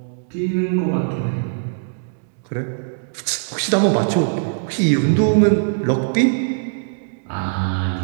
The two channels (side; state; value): left; silent; digital silence